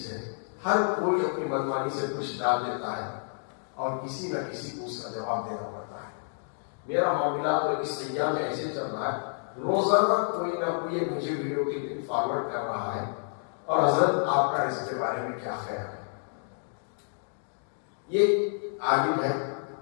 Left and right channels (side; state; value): right; silent; digital silence